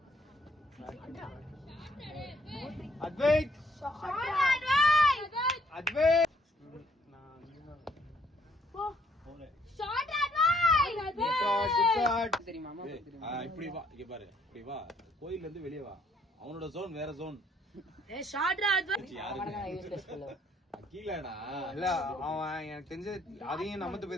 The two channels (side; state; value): both; normal; correlation 0.66